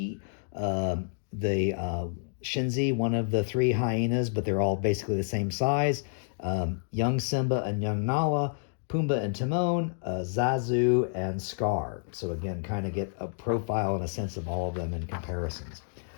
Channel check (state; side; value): silent; right; digital silence